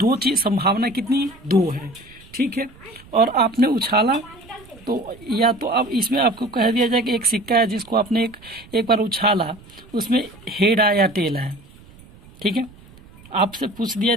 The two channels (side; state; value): right; noise; rumble, 23 dB below the sound